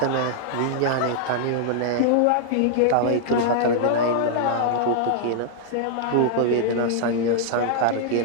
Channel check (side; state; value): both; different; correlation -0.01